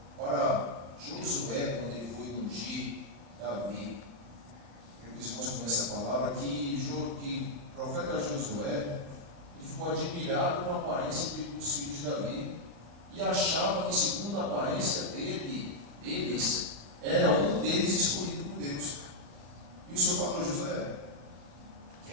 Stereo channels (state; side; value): late; left; 35 ms